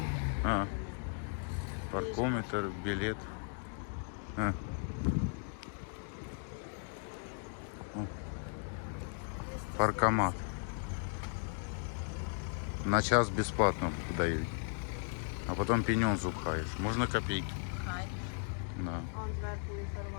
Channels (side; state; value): right; silent; 53 dB below the other